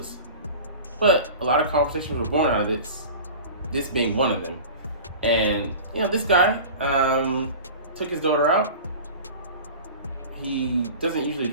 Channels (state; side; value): inverted; both; correlation -0.36